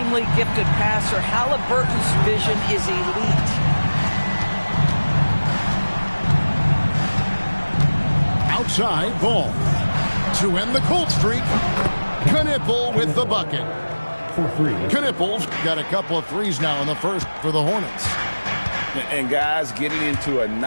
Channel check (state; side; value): inverted; both; correlation -1.00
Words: gifted passer. Halliburton's vision is elite. Outside, Ball. To end the cold streak, Knueppel with the bucket. Knueppel's got a couple of threes now in the first for the Hornets. And guys getting into a